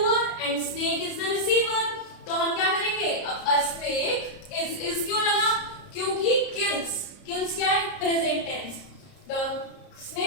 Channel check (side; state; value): right; late; 30 ms